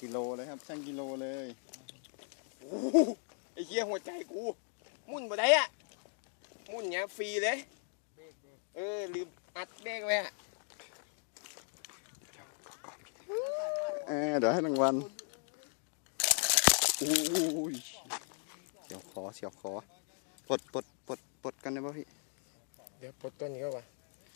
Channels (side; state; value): right; silent; 53 dB below the other